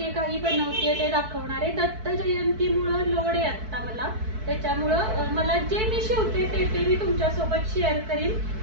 काही बनवते ते दाखवणार आहे. दत्त जयंतीमुळं लोड आहे आता मला, त्याच्यामुळं मला जे मी शिवते ते मी तुमच्यासोबत शेअर करीन.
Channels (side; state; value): left; late; 4.6 ms